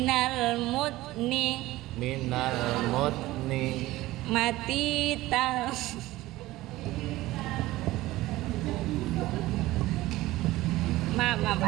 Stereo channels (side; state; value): left; quieter; 17.6 dB